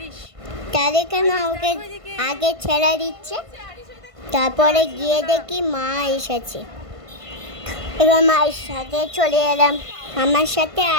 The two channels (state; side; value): late; left; 1.5 ms